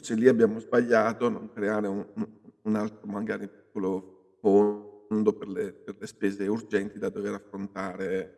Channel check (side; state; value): both; identical; correlation 1.00